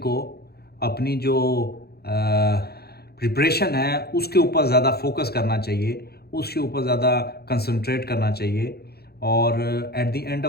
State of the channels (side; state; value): right; late; 0.46 ms